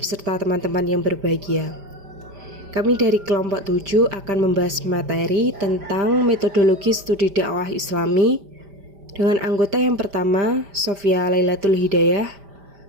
teman-teman yang berbahagia. Kami dari kelompok 7 akan membahas materi tentang metodologi studi dakwah Islami dengan anggota yang pertama, Sofia Lailatul Hidayah,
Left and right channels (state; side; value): late; left; 5.0 ms